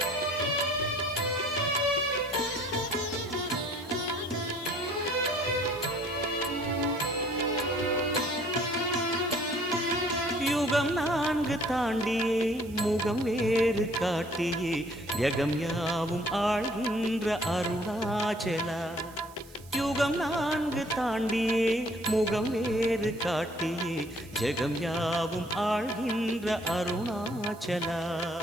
நான்கு தாண்டியே முகம் வேறு காட்டியே யகம் யாவும் ஆழ்கின்ற அருணாச்சலா. யுகம் நான்கு தாண்டியே முகம் வேறு காட்டியே ஜெகம் யாவும் ஆழ்கின்ற அருணாச்சலா.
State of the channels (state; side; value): noise; right; hiss, 22 dB below the sound